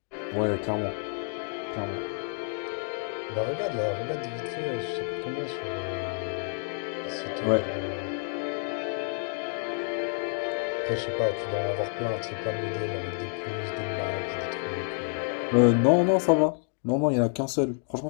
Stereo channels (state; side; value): silent; right; digital silence